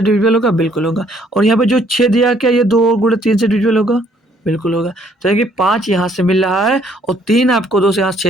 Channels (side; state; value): both; normal; correlation 0.65